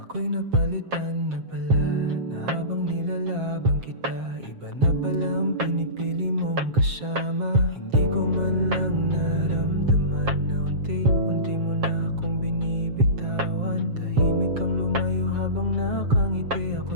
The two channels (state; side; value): late; left; 7.5 ms